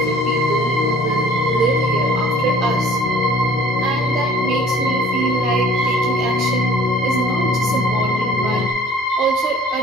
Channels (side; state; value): both; normal; correlation 0.52